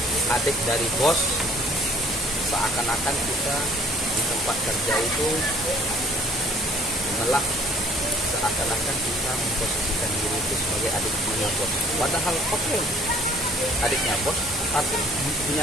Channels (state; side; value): normal; both; correlation 0.56